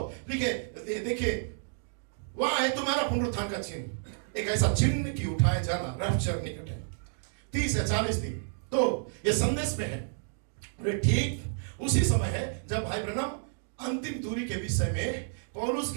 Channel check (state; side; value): silent; left; digital silence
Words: देखिए वहां है तुम्हारा पुनरुत्थान का चिन्ह, एक ऐसा चिन्ह कि उठाए जाना रैप्चर निकट है। 30 या 40 दिन तो ये संदेश में है। ठीक उसी समय है जब भाई ब्रैनम अंतिम दूरी के विषय में पौलुस